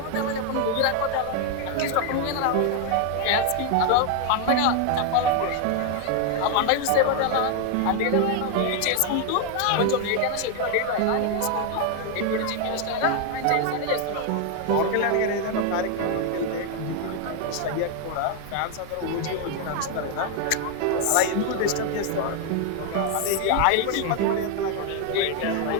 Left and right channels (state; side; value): different; both; correlation 0.01